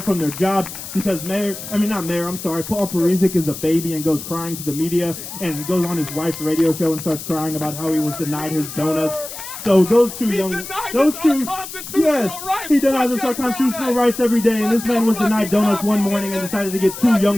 from their jobs because Paul Parisic is a baby and goes crying to the media and goes on his wife's radio show and starts crying about how he was denied his donuts. So yes, he denies us our constitutional rights every day, and this man was denied donuts one morning and decided to get 2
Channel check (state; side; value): noise; left; hiss, 10 dB below the sound